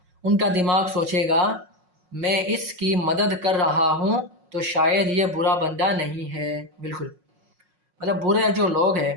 उनका दिमाग सोचेगा मैं इसकी मदद कर रहा हूँ तो शायद ये बुरा बंदा नहीं है। बिल्कुल, मतलब बुरे जो लोग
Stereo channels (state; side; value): late; left; 5.5 ms